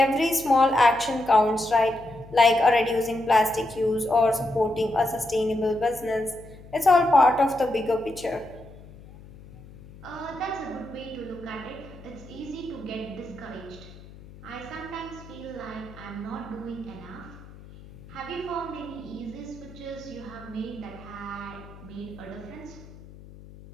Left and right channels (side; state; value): left; noise; hum, 19 dB below the sound